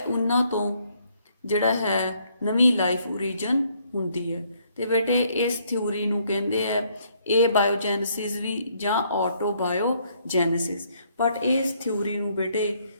ਉਹਨਾਂ ਤੋਂ ਜਿਹੜਾ ਹੈ ਨਵੀਂ ਲਾਈਫ ਓਰੀਜਨ ਹੁੰਦੀ ਹੈ। ਤੇ ਬੇਟੇ ਇਸ ਥਿਊਰੀ ਨੂੰ ਕਹਿੰਦੇ ਆ ਇਹ ਬਾਇਓਜੈਨਸਿਸ ਵੀ ਜਾਂ ਆਟੋਬਾਇਓਜੈਨਸਿਸ। ਬਟ ਇਸ ਥਿਊਰੀ ਨੂੰ ਬੇਟੇ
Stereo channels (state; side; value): inverted; both; correlation -0.68